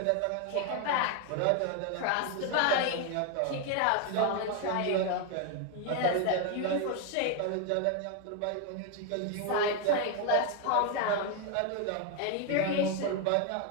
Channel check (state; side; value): different; both; correlation 0.01